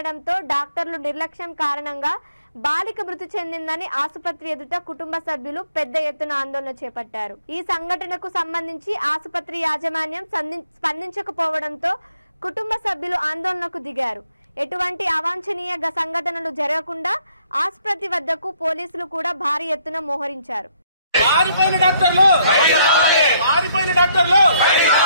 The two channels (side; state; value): both; inverted; correlation -0.69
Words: డాక్టర్లు నిర్లక్ష్యం కారణంగా బాలిక మృతి చెందిందని ఆసుపత్రి ఎదుట కుటుంబ సభ్యులు పెద్ద ఎత్తున ఆందోళన చేపట్టారు. ఈ సంఘటనకు సంబంధించి ఆసుపత్రి యాజమాన్యం స్పందించకపోవడంతో కుటుంబ సభ్యులు ఆందోళనకు దిగారు. ఎటువంటి అవాంఛనీయ సంఘటనలు జరగకుండా ఆసుపత్రి వద్దకు పోలీసులు కూడా భారీ ఎత్తున మోహరించారు. పారిపోయిన డాక్టర్లు